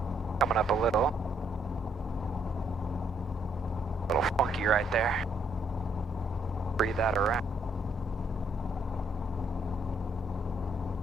Coming up a little. A little funky right there. Breathe that around.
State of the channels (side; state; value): both; normal; correlation 0.70